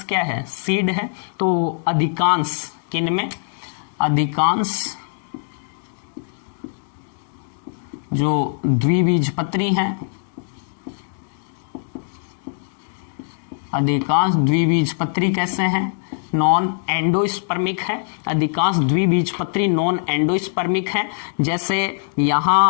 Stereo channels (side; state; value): right; silent; digital silence